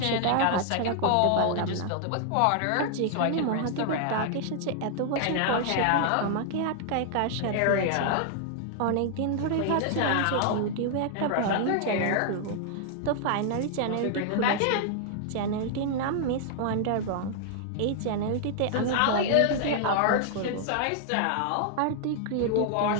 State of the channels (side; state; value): both; different; correlation 0.00